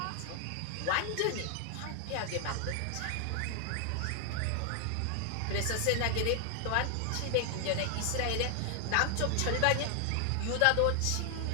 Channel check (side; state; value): both; different; correlation 0.00